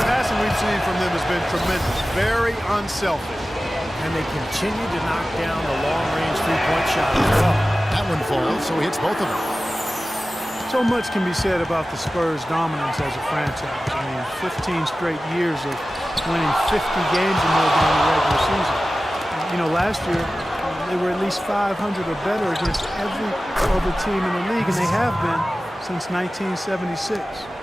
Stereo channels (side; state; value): both; normal; correlation 0.95